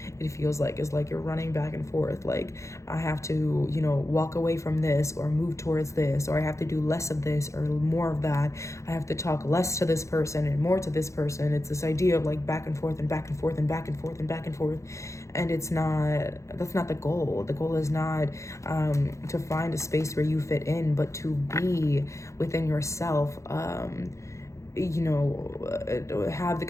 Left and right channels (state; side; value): late; right; 0.15 ms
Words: it feels like, is like you're running back and forth. Like I have to, you know, walk away from this or move towards this, or I have to do less of this or more of that. I have to talk less to this person and more to this person. It's this idea of like back and forth and back and forth and back and forth and back and forth. And that's not the goal. The goal is not to find a space where you fit in, but to be within yourself, have the